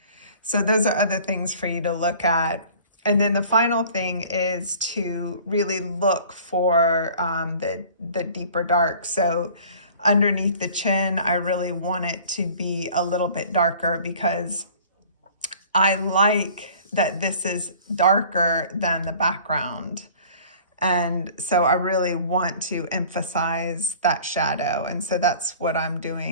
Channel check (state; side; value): inverted; both; correlation -0.48